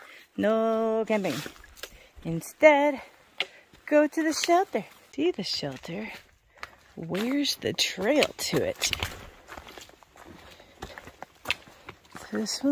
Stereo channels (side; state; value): both; identical; correlation 1.00